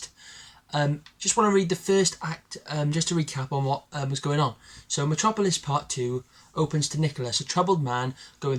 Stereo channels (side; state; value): both; identical; correlation 1.00